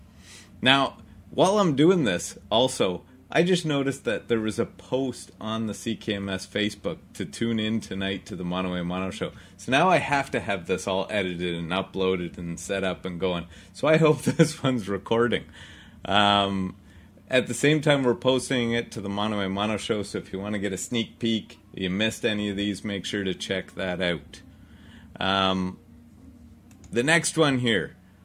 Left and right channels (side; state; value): both; identical; correlation 1.00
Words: Now, while I'm doing this, also, I just noticed that there was a post on the CKMS Facebook to tune in tonight to the Mono A Mono Show. So now I have to have this all edited and uploaded and set up and going. So I hope this one's recording. At the same time, we're posting it to the Mono A Mono Show. So if you want to get a sneak peek, you missed any of these, make sure to check that out. The next one here.